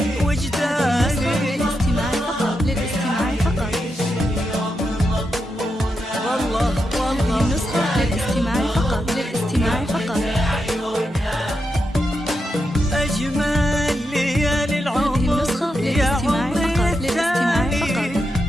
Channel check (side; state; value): both; normal; correlation 0.86